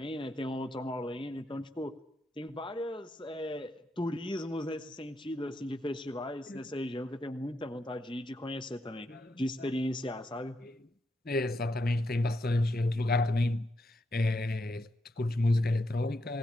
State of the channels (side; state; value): both; normal; correlation 0.82